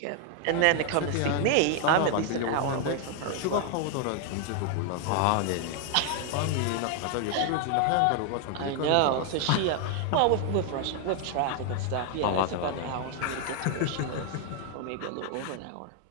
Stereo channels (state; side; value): different; both; correlation 0.00